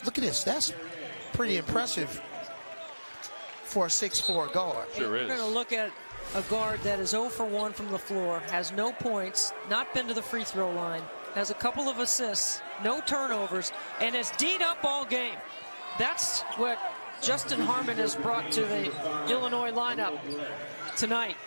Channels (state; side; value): inverted; both; correlation -1.00